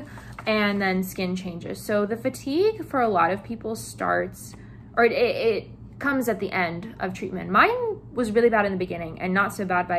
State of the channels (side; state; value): both; identical; correlation 1.00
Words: and then skin changes. So the fatigue for a lot of people starts, or it comes at the end of treatment. Mine was really bad in the beginning and not so bad